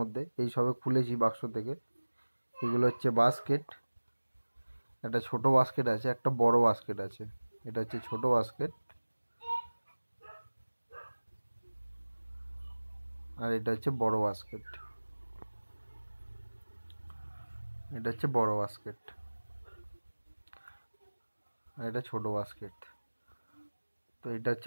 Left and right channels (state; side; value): inverted; both; correlation -1.00